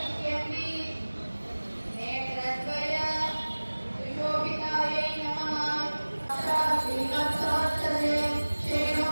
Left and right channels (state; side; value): inverted; both; correlation -1.00